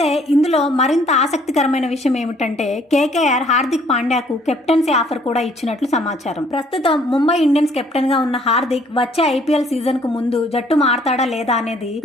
ఇందులో మరింత ఆసక్తికరమైన విషయం ఏమిటంటే కేకేఆర్ హార్దిక్ పాండ్యాకు కెప్టెన్సీ ఆఫర్ కూడా ఇచ్చినట్లు సమాచారం. ప్రస్తుతం ముంబై ఇండియన్స్ కెప్టెన్ గా ఉన్న హార్దిక్ వచ్చే ఐపీఎల్ సీజన్ కు ముందు జట్టు మారతాడా లేదా అనేది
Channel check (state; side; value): normal; both; correlation 0.62